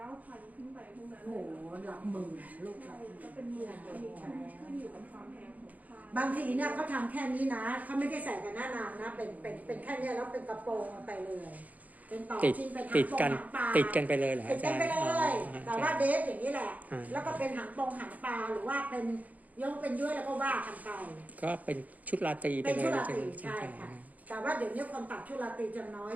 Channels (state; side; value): late; left; 0.076 ms